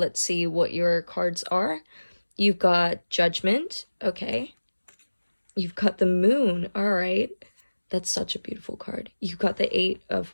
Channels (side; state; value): both; inverted; correlation -1.00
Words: see what your cards are. You've got Judgment, okay. You've got the Moon, all right. That's such a beautiful card. You've got the 8 of